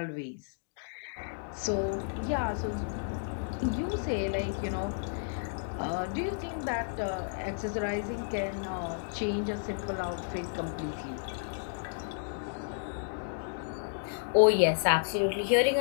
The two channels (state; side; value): silent; right; digital silence